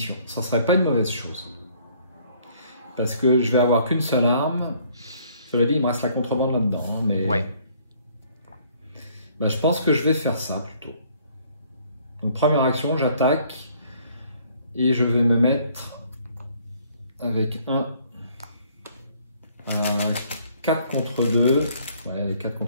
Ça ne serait pas une mauvaise chose. Parce que je vais avoir qu'une seule arme. Cela dit, il me reste la contrebande là-dedans. Hein, mais ouais. Bah, je pense que je vais faire ça plutôt. Donc, première action, j'attaque. Et je vais me mettre avec un 4 contre 2. Ouais, les 4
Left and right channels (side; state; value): both; inverted; correlation -0.61